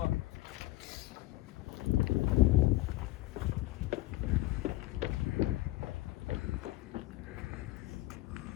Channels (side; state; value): right; quieter; 17.9 dB